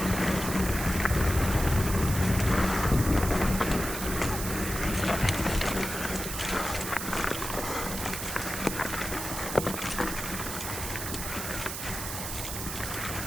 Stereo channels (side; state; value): right; noise; hiss, 6 dB below the sound